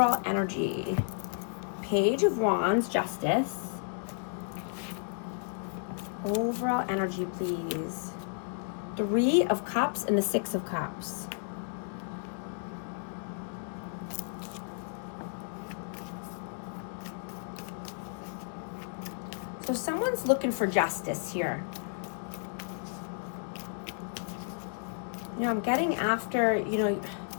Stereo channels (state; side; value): silent; right; digital silence